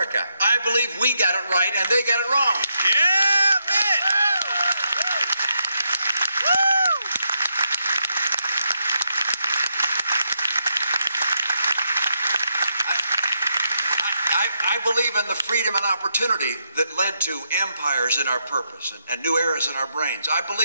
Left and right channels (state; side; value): inverted; both; correlation -0.80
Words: I believe we got it right and they got it wrong. Yeah, man! I believe in the freedom and opportunity that led to empires in our purpose and new eras in our brains. I